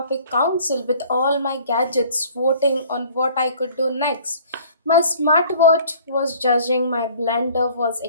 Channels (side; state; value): both; inverted; correlation -0.52